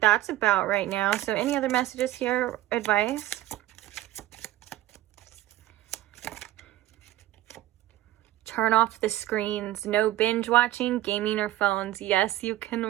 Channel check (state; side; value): quieter; left; 14.9 dB